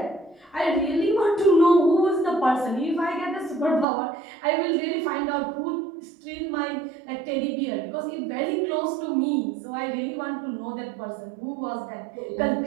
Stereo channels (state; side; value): drops out; left; at 3.9 s